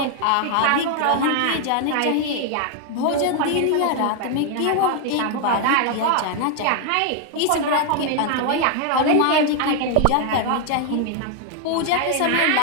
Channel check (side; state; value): both; different; correlation 0.00